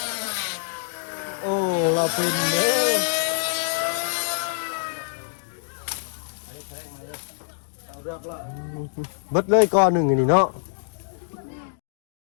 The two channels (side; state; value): right; silent; 62 dB below the other